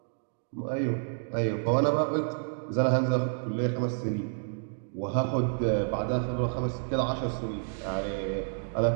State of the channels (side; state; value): left; silent; digital silence